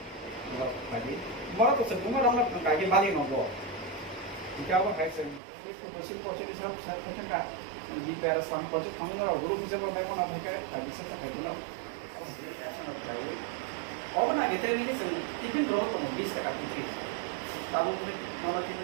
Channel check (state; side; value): drops out; left; at 5.4 s